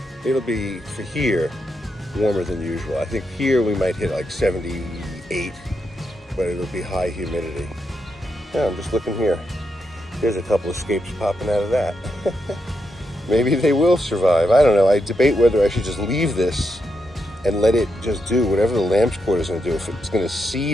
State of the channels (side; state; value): both; normal; correlation 0.83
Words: It'll be for here warmer than usual. I think here we might hit like 78, but it'll be high humidity. Yeah, I'm just looking here. There's a couple of scapes popping out of that. Maybe they will survive. I don't know. I debate whether I should just leave this and let it just do whatever the lamb's quarter is going to do. If it's going to